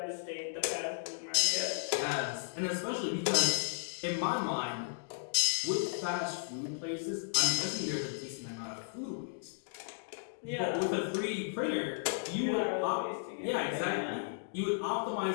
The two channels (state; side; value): silent; right; digital silence